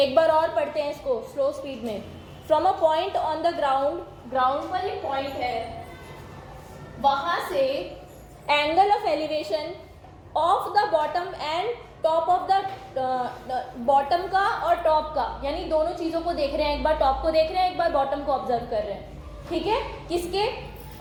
बार और पढ़ते हैं इसको slow speed में। From a point on the ground, ground पर एक point है, वहां से angle of elevation of the bottom and top of the bottom का और टॉप का, यानी दोनों चीज़ों को देख रहे हैं, एक बार टॉप को देख रहे हैं, एक बार बॉटम को ऑब्जर्व कर रहे हैं। ठीक है, किसके?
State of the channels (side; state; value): both; identical; correlation 1.00